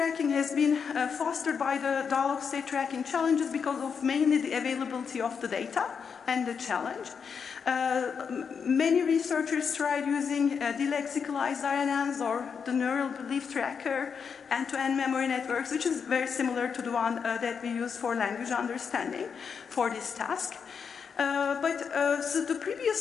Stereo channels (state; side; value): quieter; right; 6.4 dB